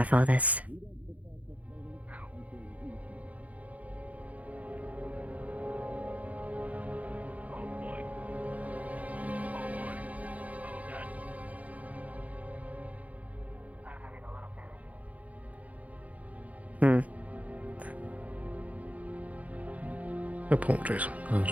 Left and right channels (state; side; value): late; left; 0.070 ms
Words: for this. Apologies. I'll